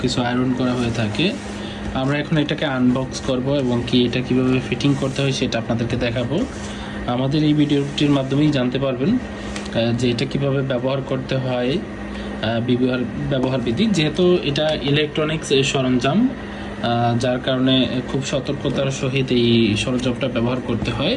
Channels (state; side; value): identical; both; correlation 1.00